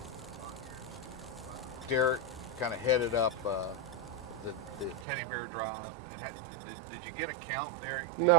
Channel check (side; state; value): left; drops out; at 5.1 s